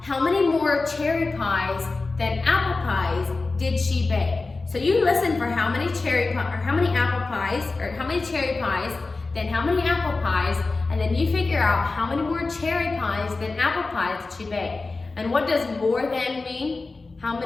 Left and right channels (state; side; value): quieter; right; 3.7 dB